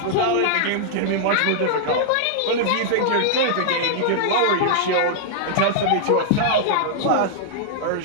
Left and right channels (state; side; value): different; both; correlation -0.01